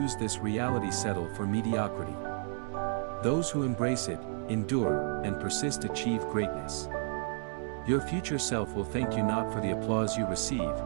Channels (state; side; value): silent; left; 56 dB below the other